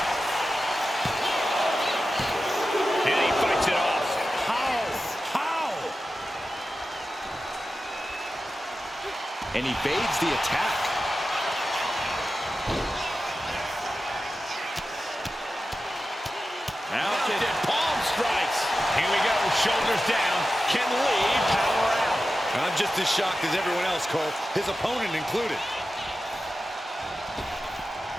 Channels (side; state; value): both; normal; correlation 0.93